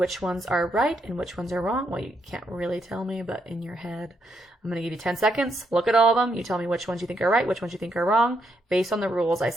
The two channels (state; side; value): normal; both; correlation 0.78